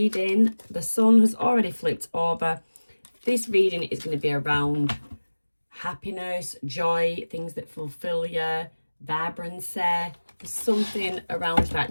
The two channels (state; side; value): inverted; both; correlation -1.00